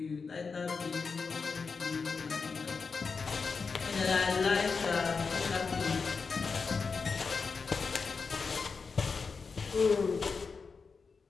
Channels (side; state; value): right; quieter; 4.9 dB